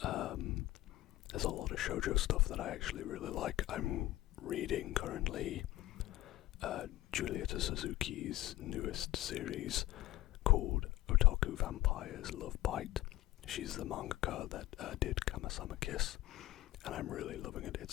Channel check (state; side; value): quieter; right; 16.2 dB